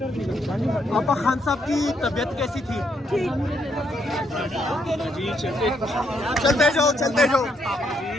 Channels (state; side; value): normal; both; correlation 0.75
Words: आपा खान साहब की तबीयत कैसी थी? चलते जाओ, चलते जाओ।